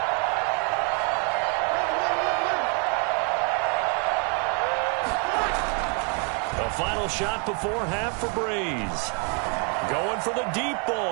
Final shot before half for Breeze. Going for the deep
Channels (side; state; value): left; quieter; 38.8 dB